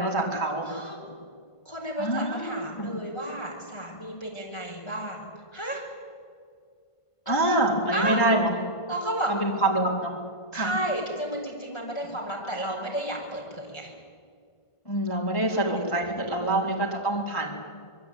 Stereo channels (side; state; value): right; late; 1.5 ms